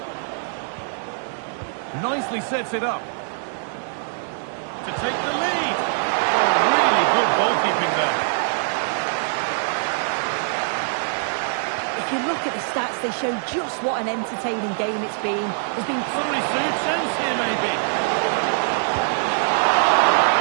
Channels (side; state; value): left; silent; digital silence